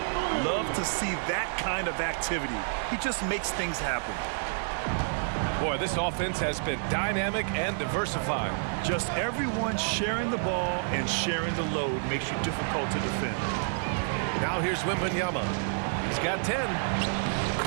Love to see that kind of activity. He just makes things happen. Boy, this offense has been dynamic and diversified. Just everyone sharing the ball and sharing the load makes you difficult to defend. Now here's Wembanyama. He's got 10.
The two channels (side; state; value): left; silent; digital silence